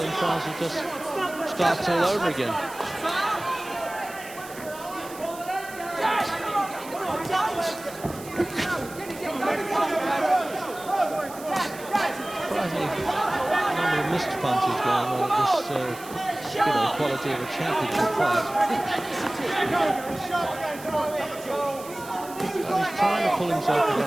Francis just starts all over again. Surprisingly, a number of missed punches going on at this, quality of a championship fight. And he's trying to pull himself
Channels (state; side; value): noise; right; hiss, 17 dB below the sound